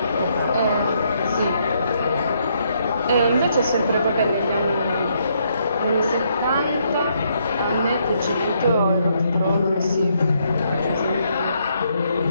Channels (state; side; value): inverted; both; correlation -0.73